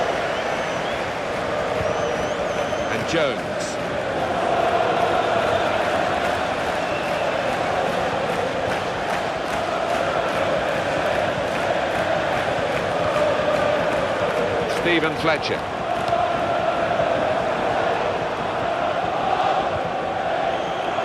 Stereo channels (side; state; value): both; identical; correlation 1.00